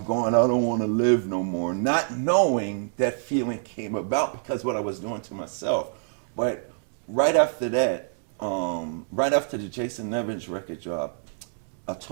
going, I don't want to live no more, not knowing that feeling came about because what I was doing to myself. But right after that, right after the Jason Evans record dropped, I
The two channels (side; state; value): left; silent; digital silence